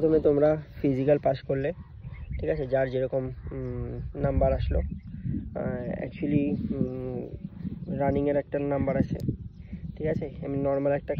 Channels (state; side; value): identical; both; correlation 1.00